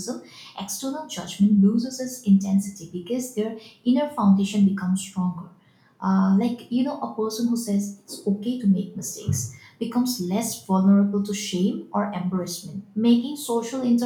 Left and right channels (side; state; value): both; identical; correlation 1.00